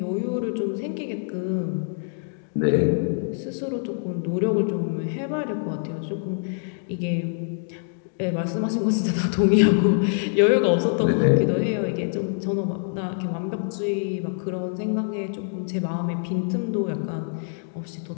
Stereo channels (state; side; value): silent; right; digital silence